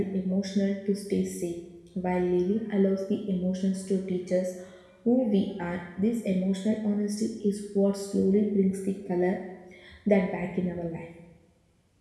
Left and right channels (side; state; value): both; identical; correlation 1.00